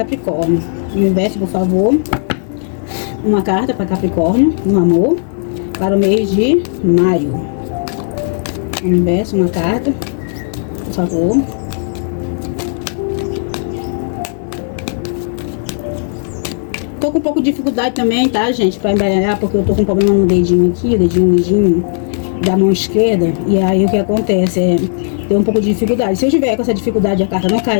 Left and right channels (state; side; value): silent; right; digital silence